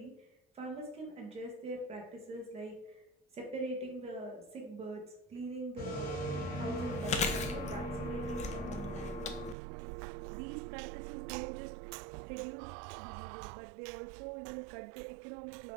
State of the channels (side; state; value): left; drops out; at 9.6 s